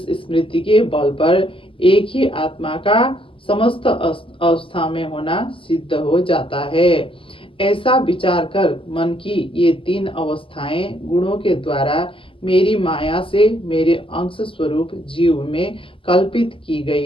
स्मृति के बल पर एक ही आत्मा का समस्त अवस्था में होना सिद्ध हो जाता है। ऐसा विचार कर मन की ये तीन अवस्थाएं गुणों के द्वारा मेरी माया से मेरे अंश स्वरूप जीव में कल्पित की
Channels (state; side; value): late; right; 0.25 ms